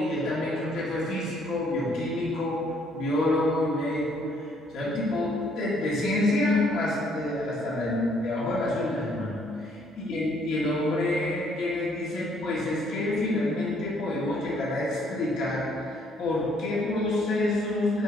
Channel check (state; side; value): normal; both; correlation 0.66